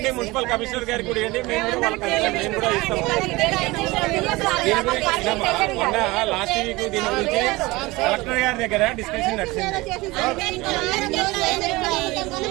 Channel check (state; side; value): quieter; left; 21.6 dB